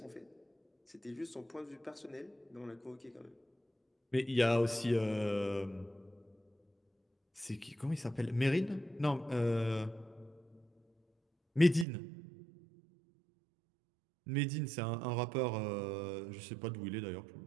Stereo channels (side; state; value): left; drops out; at 11.9 s